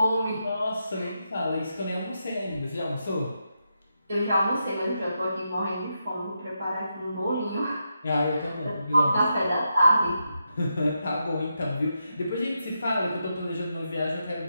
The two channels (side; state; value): both; inverted; correlation -0.84